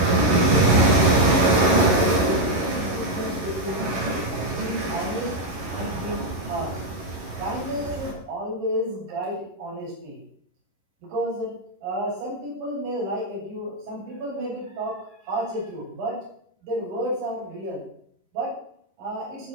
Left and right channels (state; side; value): late; left; 11 ms